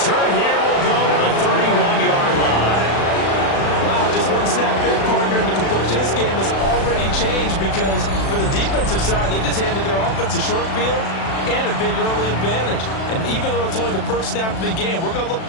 here will go to the 31-yard line. Wow, just one snap in, partner, and the complexion. This game has already changed because for the defensive side, they just handed their offense a short field and a big early advantage. And even though it's only the first snap of the game, we're going to look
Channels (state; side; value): late; right; 36 ms